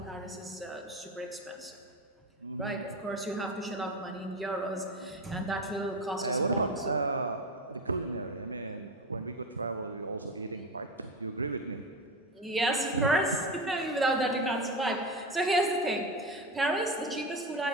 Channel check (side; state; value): both; normal; correlation 0.21